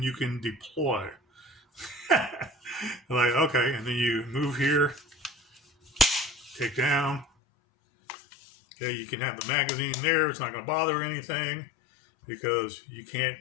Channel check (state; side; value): drops out; right; at 7.2 s